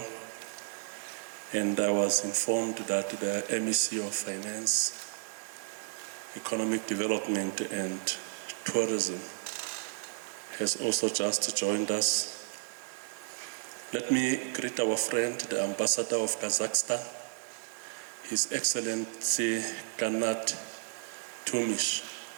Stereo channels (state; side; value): silent; left; digital silence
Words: and I was informed that the MEC of Finance, Economic Development and Tourism has also just joined us. Let me greet our friend, the Ambassador of Kazakhstan, His Excellency Kanat Tumish.